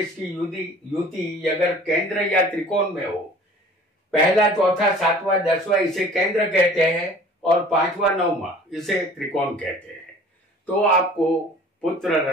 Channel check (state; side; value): normal; both; correlation 0.47